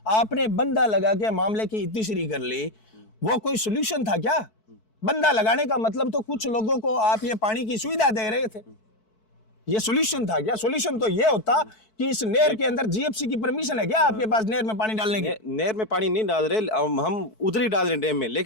आपने बंदा लगा के मामले की इतिश्री कर ली। वो कोई सोल्यूशन था क्या? बंदा लगाने का मतलब तो कुछ लोगों को आप ये पानी की सुविधा दे रहे थे, ये सोल्यूशन था क्या? सोल्यूशन तो ये होता कि इस नहर के अंदर जीएफसी की परमिशन है क्या आपके पास नहर में पानी डालने की? नहर में पानी नहीं डाल रहे, हम उधर ही डाल रहे हैं डैम में,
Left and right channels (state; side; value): late; right; 4.6 ms